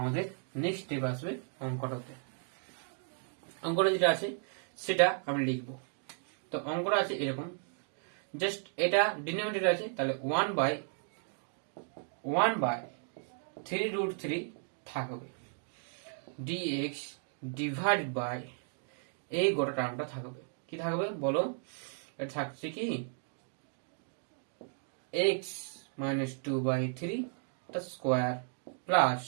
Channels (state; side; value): silent; left; 55 dB below the other